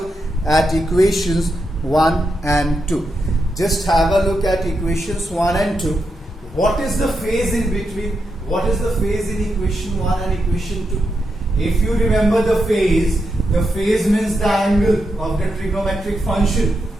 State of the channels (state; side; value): normal; both; correlation 0.84